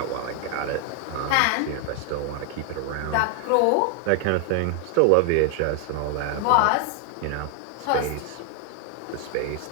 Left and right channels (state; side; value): different; both; correlation 0.00